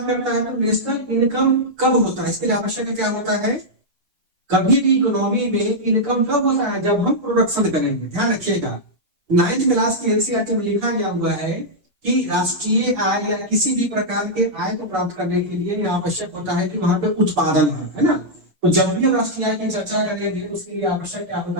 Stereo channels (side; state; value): left; late; 7.1 ms